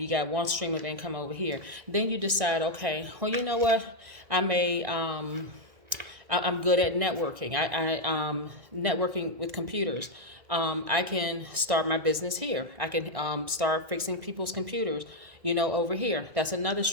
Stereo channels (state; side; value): late; left; 1.6 ms